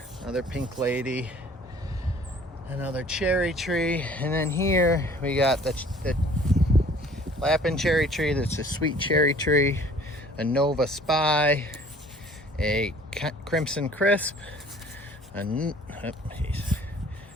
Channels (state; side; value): normal; both; correlation 0.53